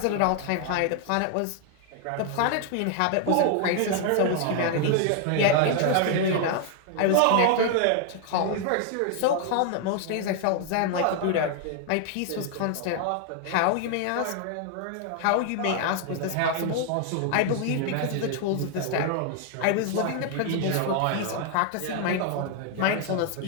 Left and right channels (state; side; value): different; both; correlation 0.00